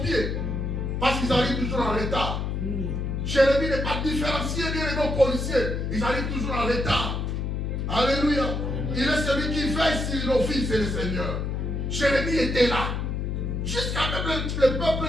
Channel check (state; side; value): noise; left; hum, 2 dB below the sound